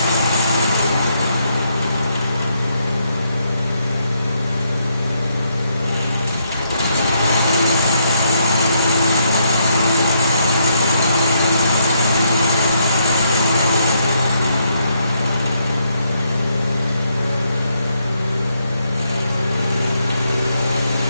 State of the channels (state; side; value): inverted; both; correlation -0.75